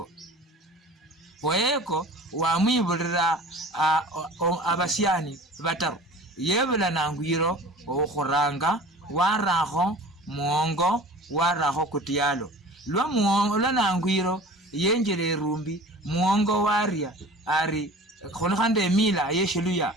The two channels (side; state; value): both; normal; correlation 0.41